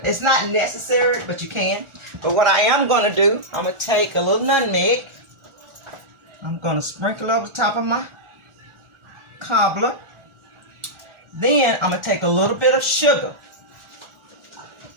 It's not necessary, but you can. But what I am going to do, I'm going to take a little nutmeg. I'm going to sprinkle over the top of my cobbler. Then I'm going to take a little bit of sugar.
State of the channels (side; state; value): left; late; 1.4 ms